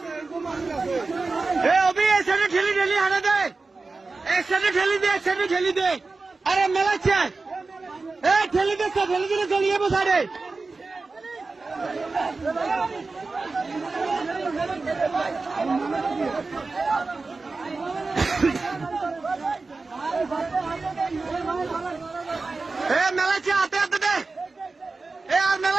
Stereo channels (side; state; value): left; quieter; 3.8 dB